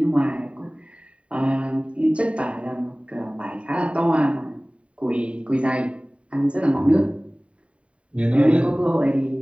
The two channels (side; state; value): left; late; 0.062 ms